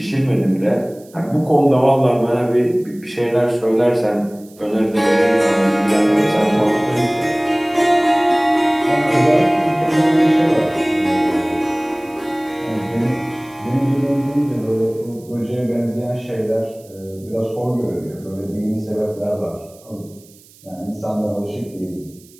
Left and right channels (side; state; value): right; noise; hiss, 26 dB below the sound